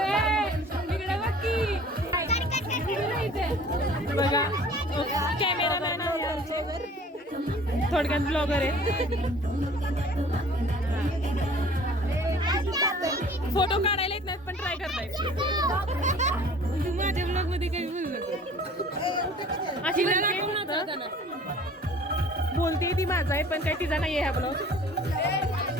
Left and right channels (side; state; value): both; normal; correlation 0.49